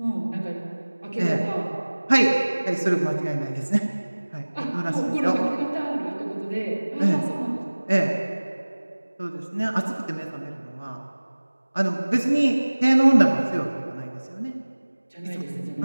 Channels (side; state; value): both; inverted; correlation -1.00